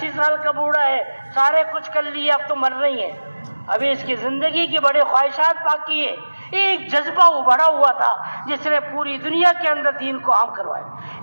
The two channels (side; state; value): both; inverted; correlation -1.00